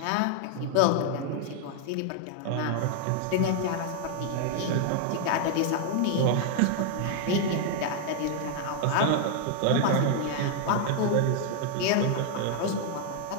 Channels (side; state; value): both; different; correlation 0.00